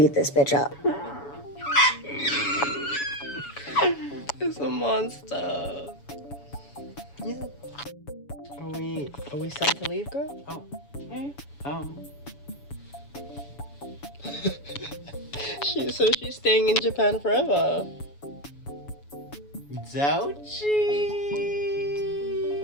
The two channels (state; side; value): late; right; 7.1 ms